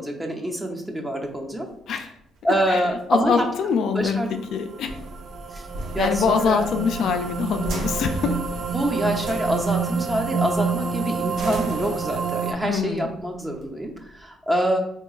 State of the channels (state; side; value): normal; both; correlation 0.72